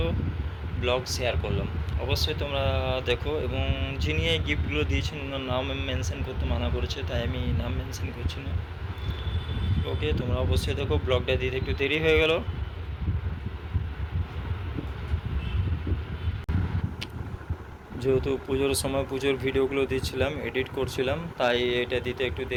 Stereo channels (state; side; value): identical; both; correlation 1.00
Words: ব্লগ শেয়ার করলাম। অবশ্যই তোমরা দেখো, এবং যিনি এই গিফটগুলো দিয়েছেন ওনার নাম মেনশন করতে মানা করেছে, তাই আমি নাম মেনশন করছি না। ওকে, তোমরা অবশ্যই দেখো। ব্লগটা দিতে একটু দেরি হয়ে গেল, যেহেতু পুজোর সময় পুজোর ভিডিওগুলো দিচ্ছিলাম, এডিট করছিলাম, তাই এটা দিতে একটু